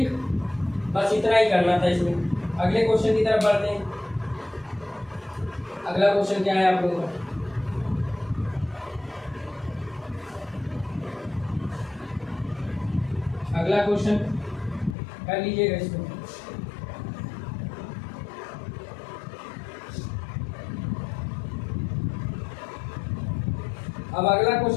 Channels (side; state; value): right; drops out; at 15.0 s